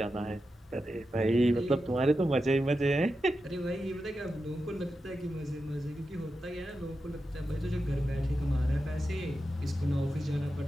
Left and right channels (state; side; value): normal; both; correlation 0.90